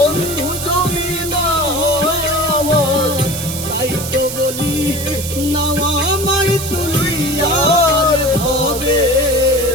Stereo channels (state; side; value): noise; right; hiss, 7 dB below the sound